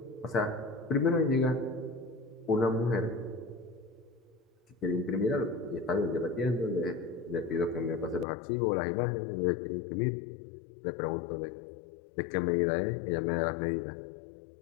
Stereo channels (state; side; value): drops out; right; at 8.2 s